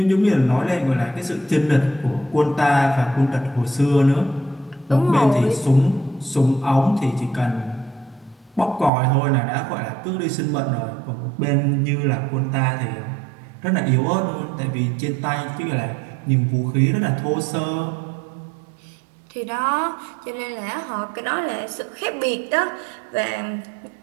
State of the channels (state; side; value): drops out; left; at 8.9 s